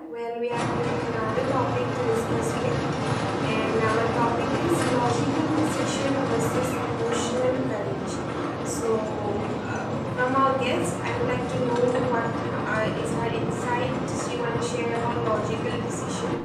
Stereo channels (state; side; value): identical; both; correlation 1.00